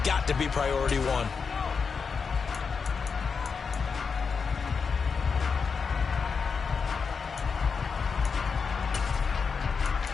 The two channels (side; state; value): right; quieter; 5.5 dB